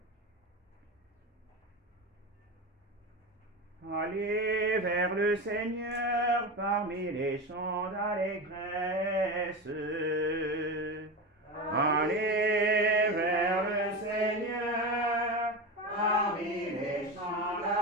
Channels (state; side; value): normal; both; correlation 0.22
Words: Allez vers le Seigneur parmi les chants d'allégresse. Allez vers le Seigneur parmi les chants